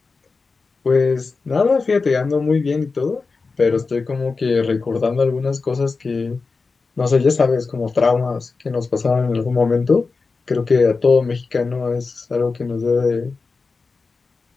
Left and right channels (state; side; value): quieter; right; 4.3 dB